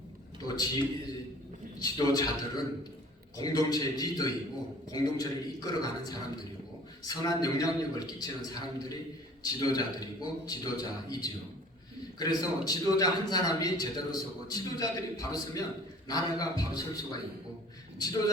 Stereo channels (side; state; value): both; normal; correlation 0.49